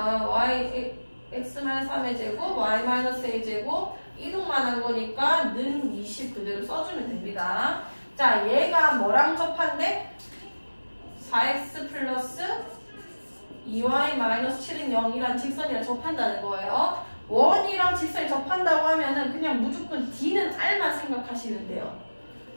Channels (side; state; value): both; inverted; correlation -1.00